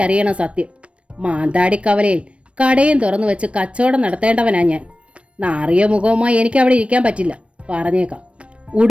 സത്യം. മാന്താടിക്കവലയിൽ കടയും തുറന്നു വെച്ച് കച്ചവടം നടത്തേണ്ടവനാ ഞാൻ. നാറിയ മുഖവുമായി എനിക്ക് അവിടെ ഇരിക്കാൻ പറ്റില്ല, പറഞ്ഞേക്കാം.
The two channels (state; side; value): late; left; 0.061 ms